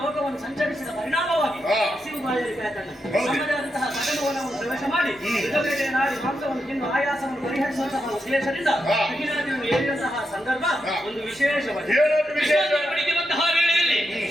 ಲೋಕವನ್ನು ಸಂಚರಿಸಿದ ಪರಿಣಾಮವಾಗಿ ಹಸಿವು ಬಾಯಲಿಕ್ಕೆ ನಮ್ಮದೇ ಆದಂತಹ ಸಕಲವನ್ನು ಪ್ರವೇಶ ಮಾಡಿ ಬೇಟೆ ನಾಡಿ ಮಾಂಸವನ್ನು ತಿಂದು ಆಯಾಸವನ್ನು ಪರಿಹರಿಸುವಂತಹ ಉದ್ದೇಶದಿಂದ ಕಠಿಣಾದಿಯನ್ನು ಏರಿದಂತಹ ಸಂದರ್ಭ ಒಂದು ವಿಶೇಷವಾಗಿ ವೇಳೆಯಲ್ಲಿ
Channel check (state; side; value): normal; both; correlation 0.85